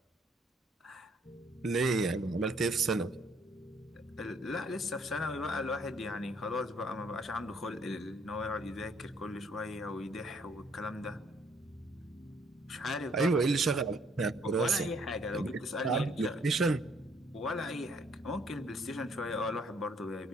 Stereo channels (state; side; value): normal; both; correlation 0.65